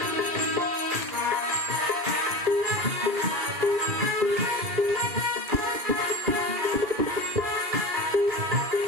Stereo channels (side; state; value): left; late; 2.5 ms